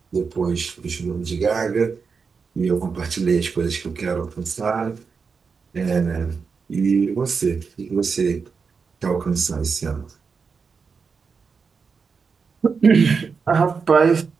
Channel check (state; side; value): quieter; left; 5.4 dB